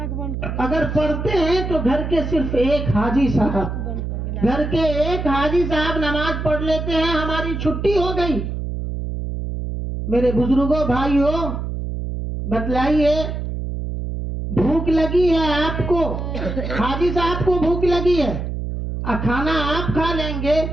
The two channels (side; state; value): right; noise; hum, 4 dB below the sound